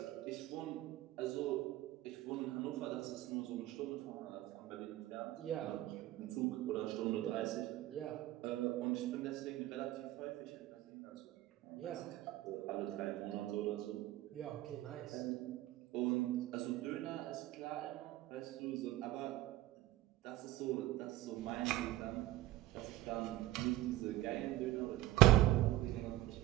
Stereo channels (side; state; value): left; quieter; 16.2 dB